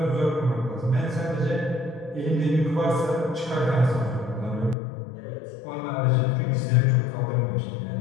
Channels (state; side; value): drops out; right; at 4.8 s